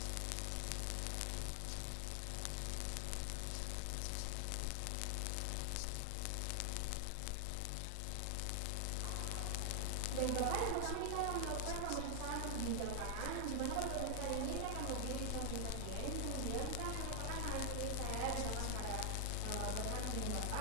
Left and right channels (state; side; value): different; both; correlation 0.00